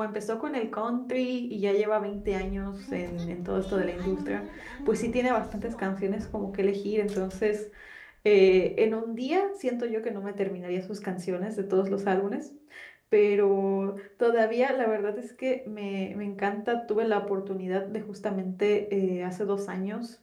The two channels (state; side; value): identical; both; correlation 1.00